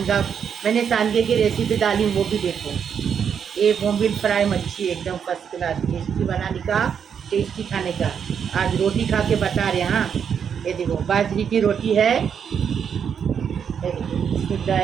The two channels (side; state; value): left; quieter; 7.5 dB